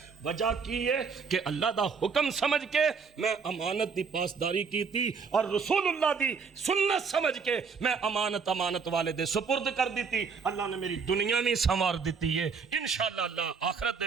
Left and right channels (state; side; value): quieter; left; 5.5 dB